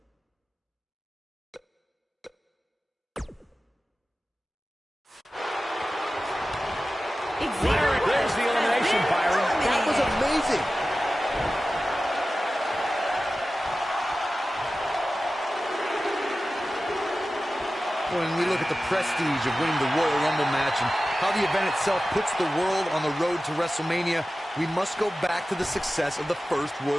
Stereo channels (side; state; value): both; normal; correlation 0.95